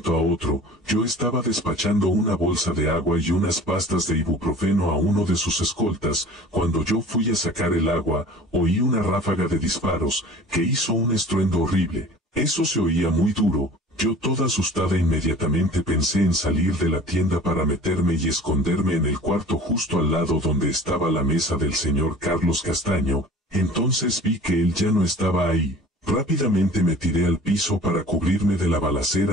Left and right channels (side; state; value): both; normal; correlation 0.44